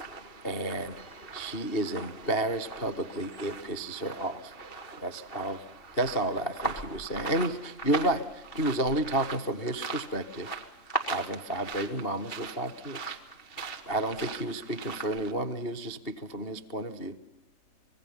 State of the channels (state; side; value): late; right; 2.8 ms